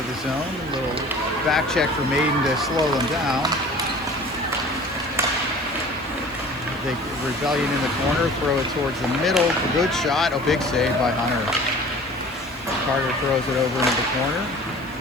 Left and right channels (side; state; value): left; noise; hiss, 26 dB below the sound